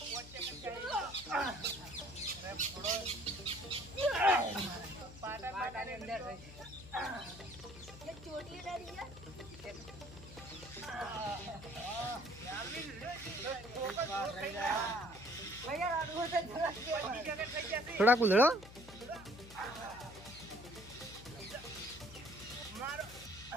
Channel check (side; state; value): left; noise; hum, 16 dB below the sound